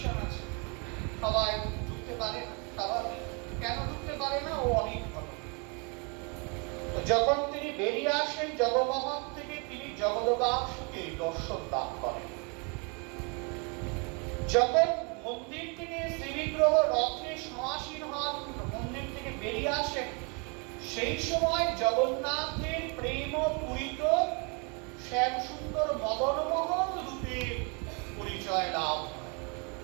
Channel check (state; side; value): quieter; left; 33.6 dB